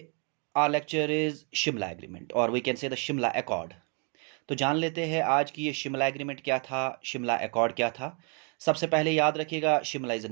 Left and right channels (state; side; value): quieter; left; 37.7 dB